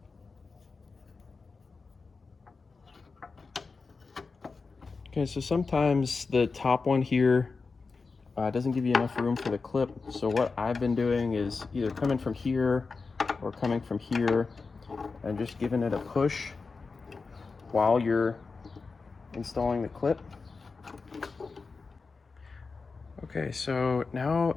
Okay, so sometimes the top one here doesn't give you enough room for the clip. So what I've been doing is either coming from here or coming from here and just giving it a push while you're installing the clip. Okay, so now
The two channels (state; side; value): quieter; right; 4.4 dB